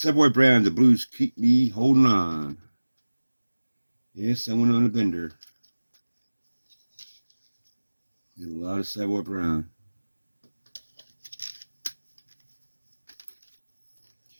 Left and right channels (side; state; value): both; inverted; correlation -1.00